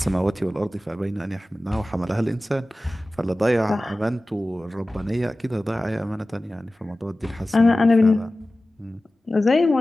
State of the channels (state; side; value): normal; both; correlation 0.96